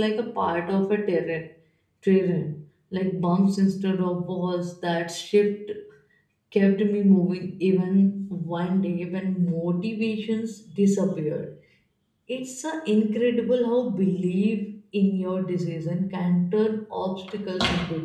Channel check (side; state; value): both; identical; correlation 1.00